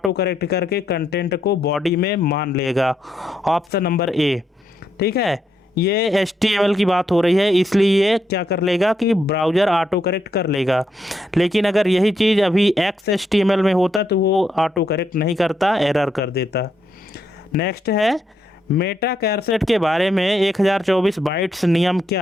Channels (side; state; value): both; normal; correlation 0.78